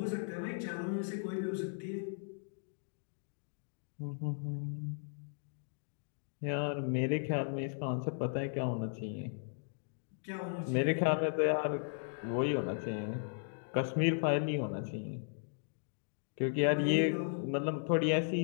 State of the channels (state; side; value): silent; right; digital silence